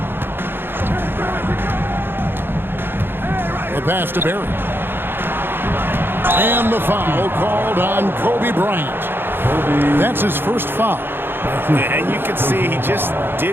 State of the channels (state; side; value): late; left; 0.10 ms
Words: The pass to Barry. And the foul called on Kobe Bryant. That's his first foul. And you can see he just